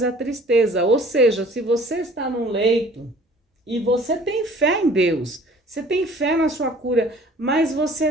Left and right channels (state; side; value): normal; both; correlation 0.51